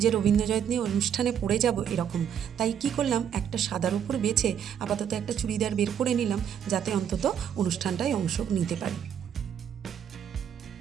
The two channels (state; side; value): quieter; left; 8.8 dB